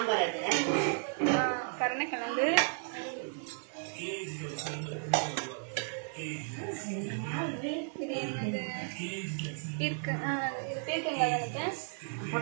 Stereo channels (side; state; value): left; silent; 55 dB below the other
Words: கருணக்கிழங்கு, இது என்னது இருக்கு, இது பேருக்குங்க நினைக்கிறேன்,